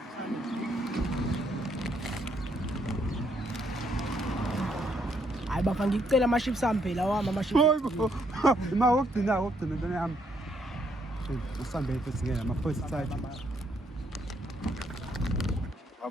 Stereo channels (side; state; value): both; normal; correlation 0.72